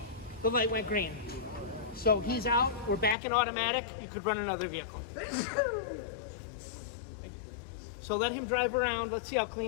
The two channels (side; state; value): right; drops out; at 3.2 s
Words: the light went green. So he's out. We're back in automatic. You could run another vehicle. So let him drive around. Let's see how